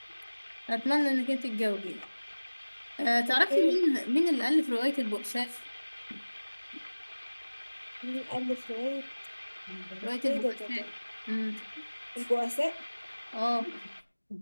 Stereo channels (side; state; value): both; inverted; correlation -1.00